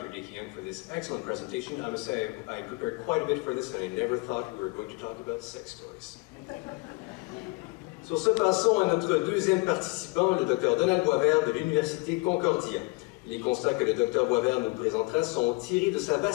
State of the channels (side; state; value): right; quieter; 26.7 dB